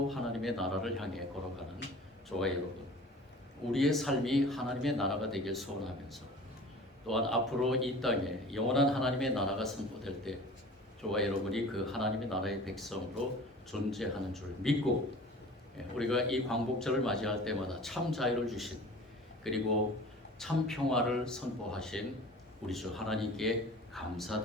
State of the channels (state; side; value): normal; both; correlation 0.42